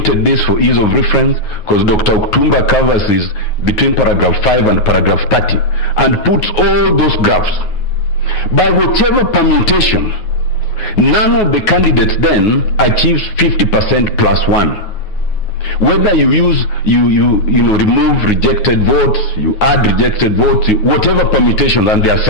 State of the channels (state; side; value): late; right; 9.5 ms